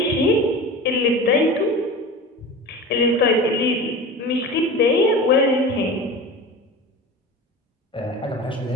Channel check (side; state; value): both; normal; correlation 0.33